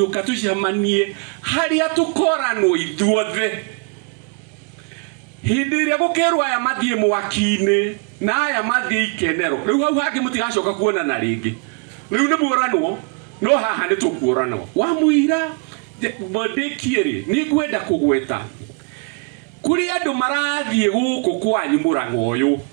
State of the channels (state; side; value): quieter; left; 35.8 dB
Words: tucemanie haria tukoranwo ithuothe hindi ĩrĩa gũkĩrwo aya mathie mwaki-inĩ na aya mathie ikenero rĩu hau hangĩ mũtigacoka kuonana rĩngĩ rĩu nĩ muoranwo no haha nĩ tũkuoranwo wa mũira bondekiere ni ngwenda kugweta kuri andu marathie guku kwanyu Murang'a uyu